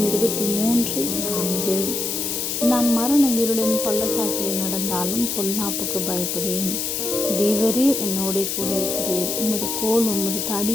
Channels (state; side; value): noise; left; hiss, 2 dB below the sound